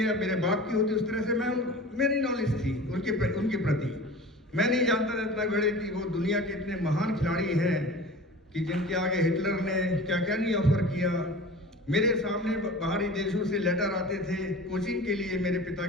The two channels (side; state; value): both; normal; correlation 0.38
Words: मेरे बाप की होती है, उस तरह से मेरी नॉलेज थी उनके प्रति। मैं नहीं जानता था इतना बड़े कि वो दुनिया के इतने महान खिलाड़ी हैं कि जिनके आगे हिटलर ने क्या क्या नहीं ऑफर किया। मेरे सामने बाहरी देशों से लेटर आते थे कोचिंग के लिए मेरे पिता